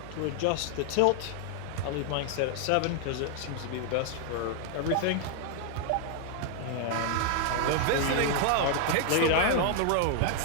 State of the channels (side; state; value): both; different; correlation 0.00